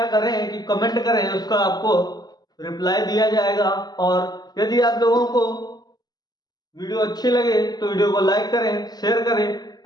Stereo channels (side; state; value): right; late; 0.20 ms